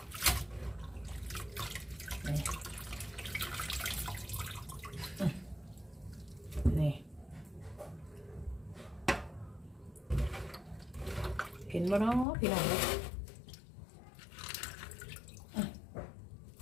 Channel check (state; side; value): drops out; right; at 12.2 s